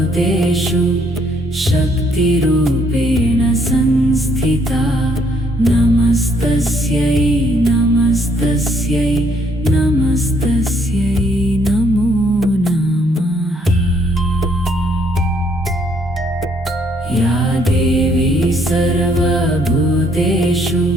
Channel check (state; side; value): normal; both; correlation 0.68